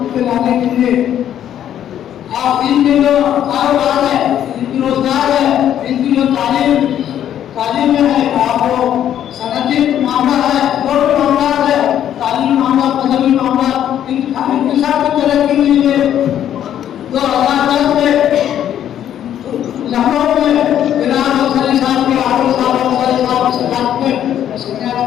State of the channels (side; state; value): right; quieter; 10.5 dB